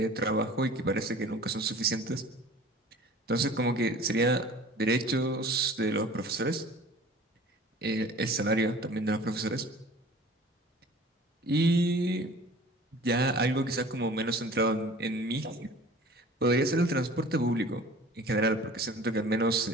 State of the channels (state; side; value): normal; both; correlation 0.45